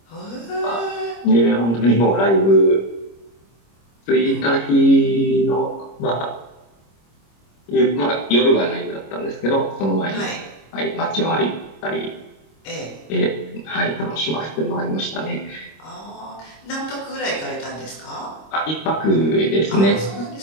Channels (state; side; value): late; right; 26 ms